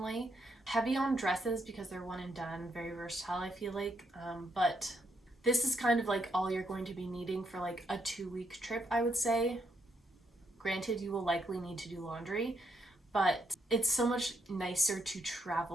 Heavy on dresses because they're one and done, very versatile I feel like, but this is kind of like all you're going to be needing for like a 2-week trip, I would say. Granted, you will likely need to do laundry, but it's so much nicer to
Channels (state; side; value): normal; both; correlation 0.76